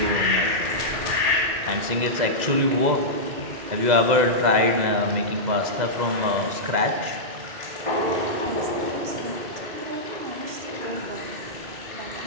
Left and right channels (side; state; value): left; late; 2.0 ms